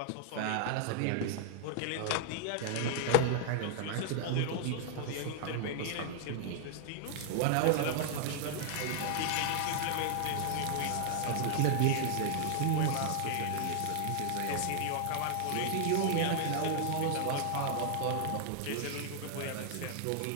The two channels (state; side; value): different; both; correlation 0.00